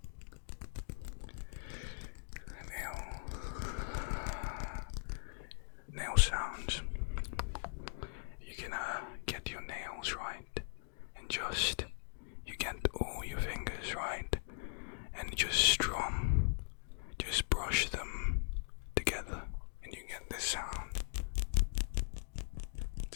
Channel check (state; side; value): silent; right; digital silence